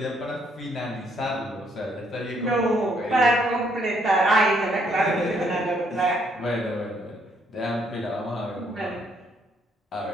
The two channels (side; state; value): both; normal; correlation 0.70